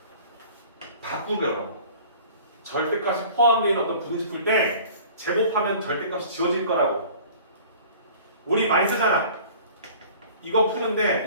바꾸더라고. 절대값이 포함되어 있는 어떤 부등식 풀 때 제곱하면 절대값이 지워질 거라고. 우리 많이 쓰잖아. 이거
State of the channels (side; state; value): both; inverted; correlation -0.47